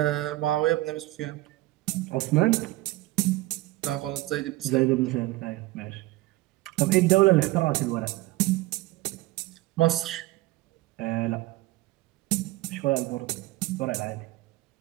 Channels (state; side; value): quieter; left; 18.8 dB